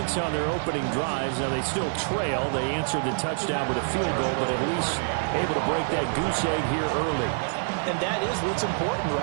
on their opening drives. Now they still trail. They answered the touchdown with a field goal, but at least able to break that goose egg here early. And that is what's important,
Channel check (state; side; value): silent; left; digital silence